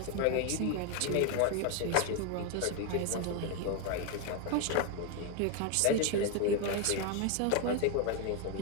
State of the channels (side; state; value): both; different; correlation 0.01